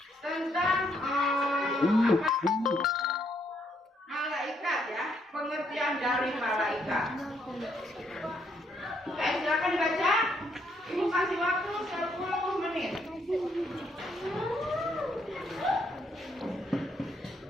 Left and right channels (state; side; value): normal; both; correlation 0.72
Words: tentang malaikat ya, pengertian dari malaikat. Silakan dibaca. Ibu kasih waktu 10 menit.